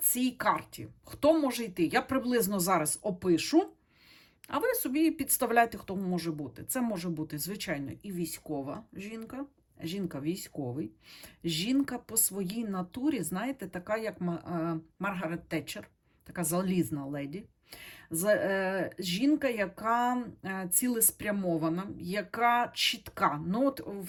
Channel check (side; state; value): both; identical; correlation 1.00